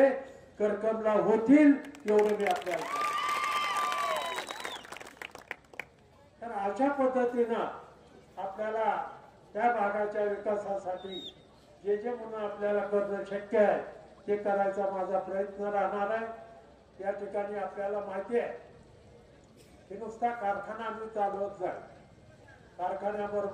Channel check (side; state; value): both; identical; correlation 1.00